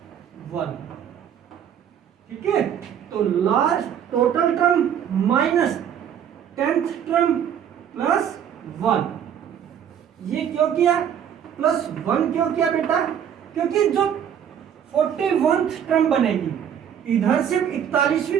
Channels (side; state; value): left; quieter; 9.0 dB